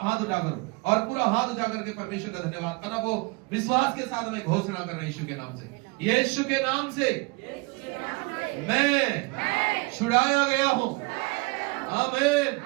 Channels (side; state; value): left; quieter; 26.7 dB